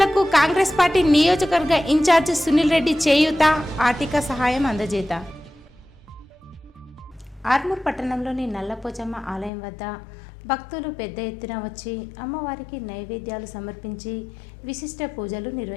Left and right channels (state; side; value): drops out; right; at 9.5 s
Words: కాంగ్రెస్ పార్టీ నియోజకవర్గ ఇన్ఛార్జ్ సునీల్ రెడ్డి చేయూత, ఆర్థిక సహాయం అందజేత. ఆర్మూర్ పట్టణంలోని నల్లపోచమ్మ ఆలయం వద్ద భక్తులు పెద్ద ఎత్తున వచ్చి అమ్మవారికి నైవేద్యాలు సమర్పించి విశిష్ట పూజలు